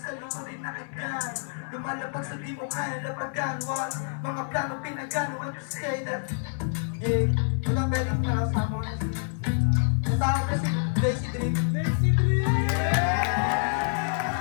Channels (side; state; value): right; silent; digital silence